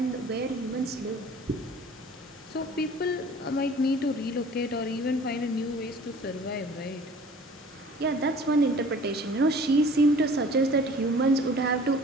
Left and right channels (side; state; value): both; normal; correlation 0.48